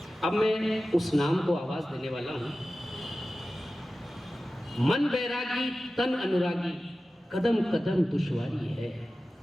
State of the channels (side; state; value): both; normal; correlation 0.95